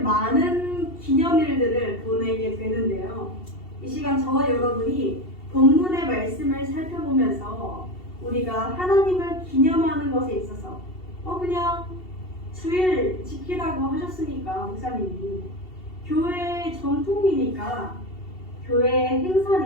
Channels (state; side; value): late; right; 2.7 ms